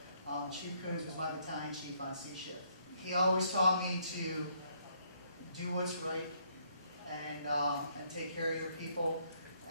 Chief Kunz was my battalion chief on C shift. He always taught me to do what's right and take care of your people.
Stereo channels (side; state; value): both; inverted; correlation -0.70